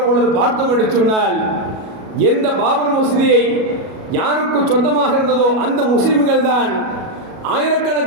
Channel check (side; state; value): left; late; 37 ms